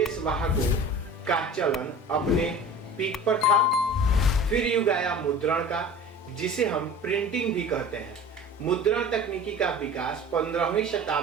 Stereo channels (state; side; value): normal; both; correlation 0.39